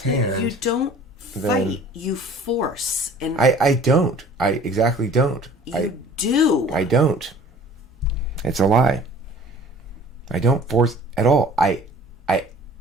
hand... You don't then fight. You force. And I don't. I exactly don't. you do. I don't. It's a lie. I don't force at all. I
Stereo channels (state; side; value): normal; both; correlation 0.48